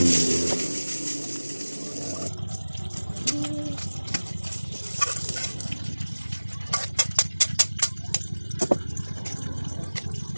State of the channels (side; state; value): both; inverted; correlation -1.00